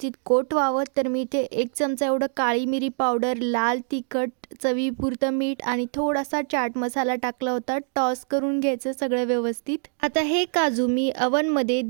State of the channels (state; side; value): silent; left; 60 dB below the other